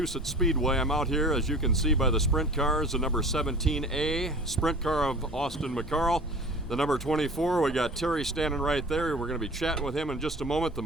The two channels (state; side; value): normal; both; correlation 0.41